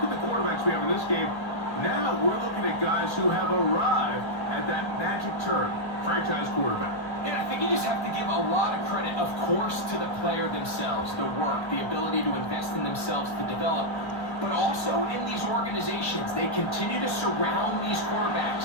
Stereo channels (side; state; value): right; late; 1.3 ms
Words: at the quarterbacks we have in this game. Now we're looking at guys who have arrived at that magic term, franchise quarterback. And I think you just have to give a lot of credit, of course, to the player themselves, the work, the ability to invest in themselves to develop, but also in these organizations. They continue to surround these